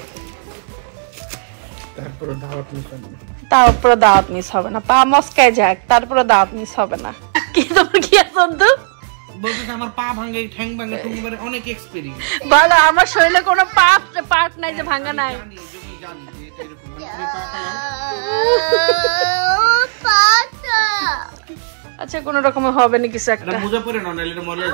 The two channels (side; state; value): left; silent; digital silence